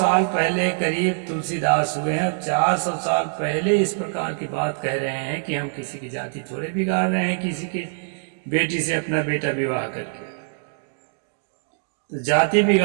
पहले करीब तुलसीदास हुए हैं। 400 साल पहले इस प्रकार की बात कह रहे हैं कि हम किसी की जाति थोड़े बिगाड़ रहे हैं, किसी के बेटी से अपना बेटा विवाह करके। तो जाति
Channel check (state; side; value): silent; left; digital silence